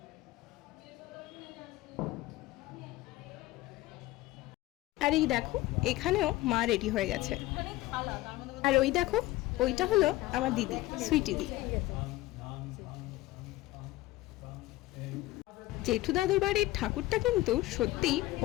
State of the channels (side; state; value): right; quieter; 17.7 dB